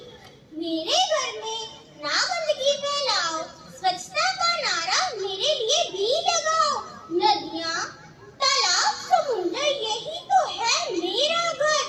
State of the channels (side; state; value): both; identical; correlation 1.00